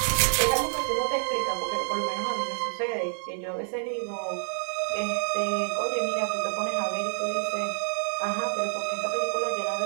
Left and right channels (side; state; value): left; silent; 55 dB below the other